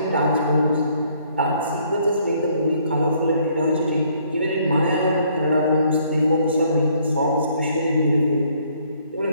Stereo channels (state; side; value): inverted; both; correlation -0.65